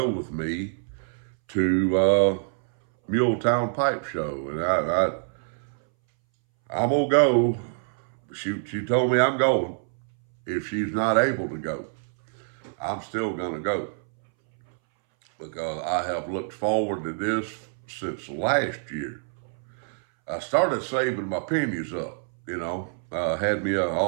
with me to Muletown Pipe Show. And I'm going to go. She told me I'm going. If she's not able to go, I'm still going to go. Because I have looked forward to this since last year. I started saving my pennies up, you know.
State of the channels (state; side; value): silent; left; 61 dB below the other